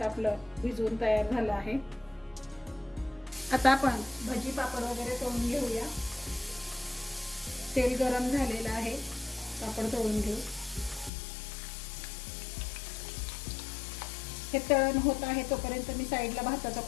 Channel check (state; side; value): drops out; right; at 11.1 s